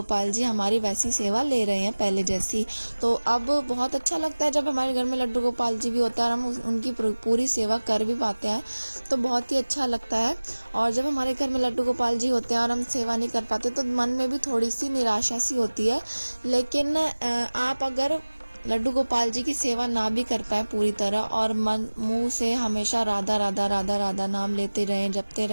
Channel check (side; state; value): both; inverted; correlation -1.00